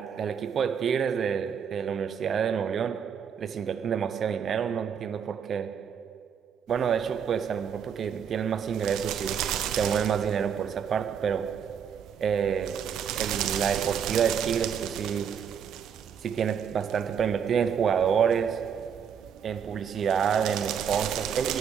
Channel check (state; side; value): quieter; left; 7.6 dB